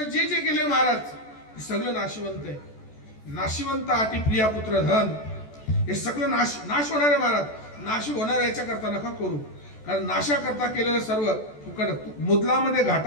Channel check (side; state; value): right; late; 14 ms